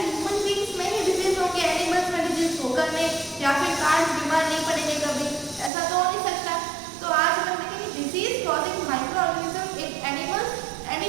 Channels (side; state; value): left; drops out; at 5.7 s